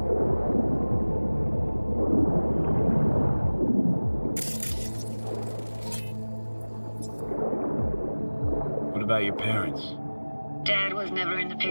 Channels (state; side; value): inverted; both; correlation -1.00